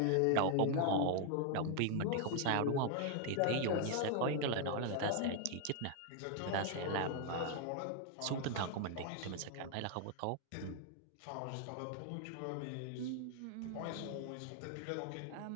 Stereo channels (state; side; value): different; both; correlation 0.00